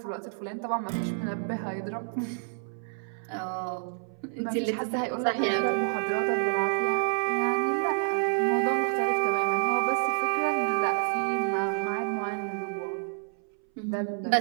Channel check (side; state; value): left; silent; 59 dB below the other